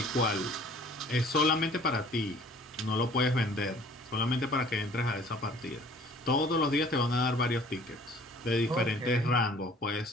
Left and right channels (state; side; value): normal; both; correlation 0.52